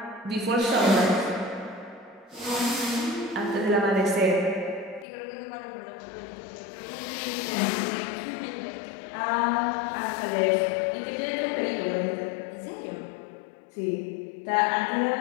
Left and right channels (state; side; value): drops out; right; at 5.1 s